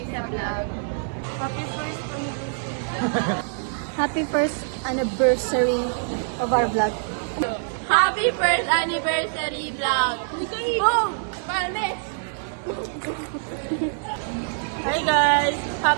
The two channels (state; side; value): silent; left; 59 dB below the other